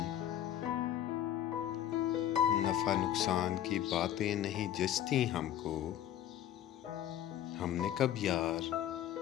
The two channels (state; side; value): quieter; right; 11.3 dB